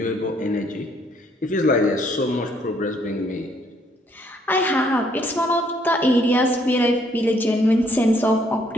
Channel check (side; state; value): both; normal; correlation 0.67